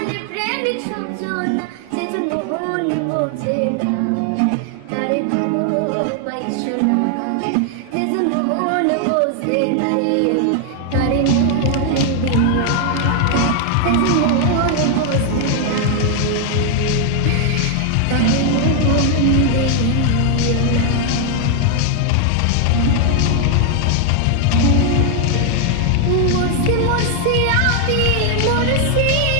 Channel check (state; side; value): different; both; correlation 0.00